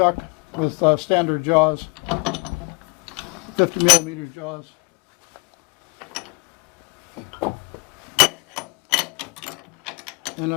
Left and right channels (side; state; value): right; quieter; 29.6 dB